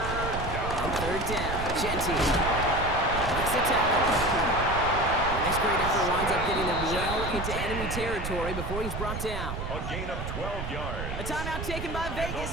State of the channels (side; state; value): right; noise; rumble, 5 dB below the sound